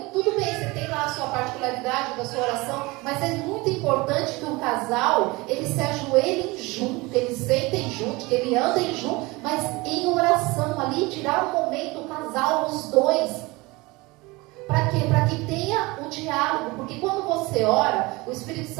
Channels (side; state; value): left; quieter; 23.2 dB